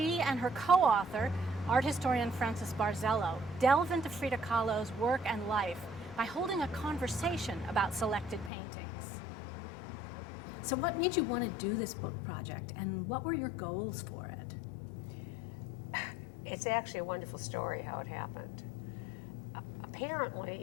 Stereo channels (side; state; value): right; drops out; at 8.5 s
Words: and her co-author, art historian Frances Barzello, delve into Frida Kahlo's work and life by holding a conversation about selected paintings. So what made you want to do this book project, and what were your goals for it? It's actually a wonderful story how it happened.